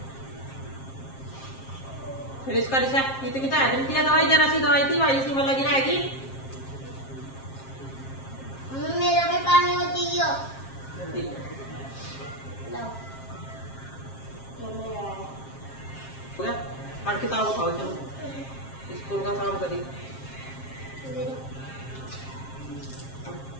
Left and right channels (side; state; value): right; late; 7.5 ms